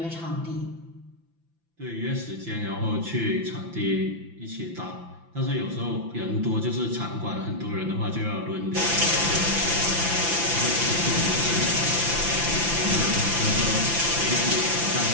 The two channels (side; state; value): left; late; 5.9 ms